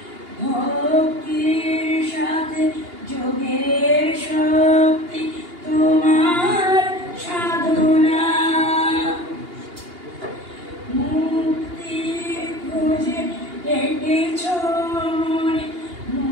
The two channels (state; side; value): late; left; 2.8 ms